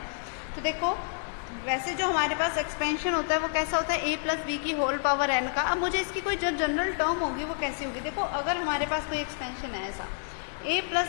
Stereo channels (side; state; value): right; silent; digital silence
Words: तो देखो वैसे जो हमारे पास एक्सपेंशन होता है वो कैसा होता है, a प्लस बी की होल पावर n का। अब मुझे इसकी कोई जो जनरल टर्म होगी वो कैसी होगी। देखो अगर हमारे पास कोई एक्सपेंशन है ऐसा a